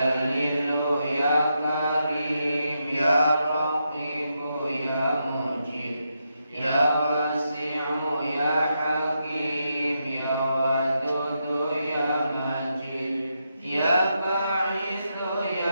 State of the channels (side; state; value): both; inverted; correlation -0.84